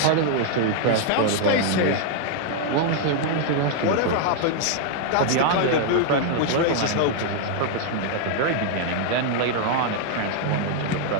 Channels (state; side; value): different; both; correlation 0.00